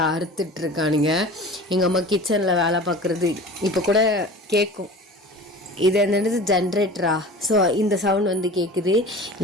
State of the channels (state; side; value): normal; both; correlation 0.39